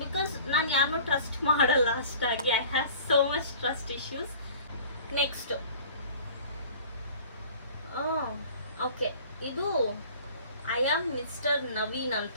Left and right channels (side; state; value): both; inverted; correlation -0.46